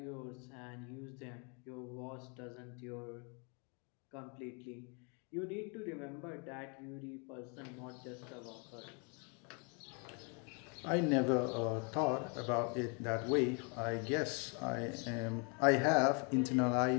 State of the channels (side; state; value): right; quieter; 35.3 dB